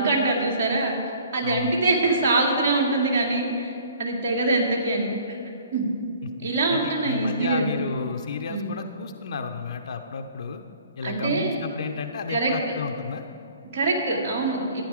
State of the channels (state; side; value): inverted; both; correlation -0.53